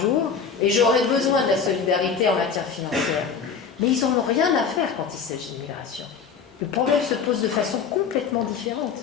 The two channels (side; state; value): right; quieter; 6.1 dB